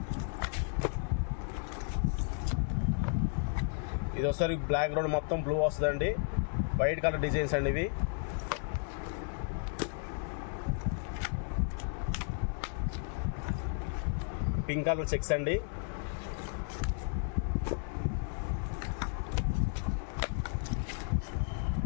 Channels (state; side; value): silent; right; 55 dB below the other